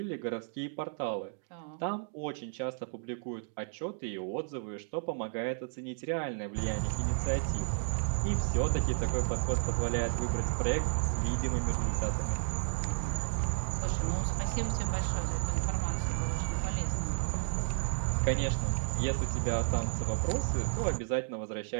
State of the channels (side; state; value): left; silent; digital silence